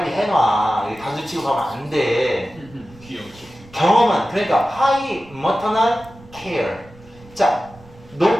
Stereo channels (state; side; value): noise; right; rumble, 23 dB below the sound